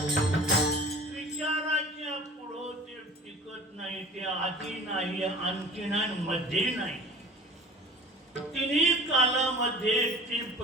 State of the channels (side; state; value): both; normal; correlation 0.43